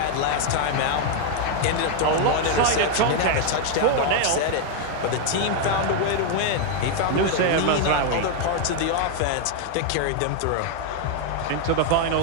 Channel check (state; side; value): different; both; correlation 0.00